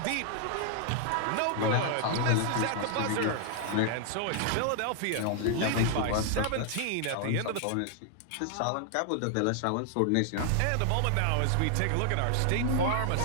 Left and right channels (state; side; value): different; both; correlation 0.00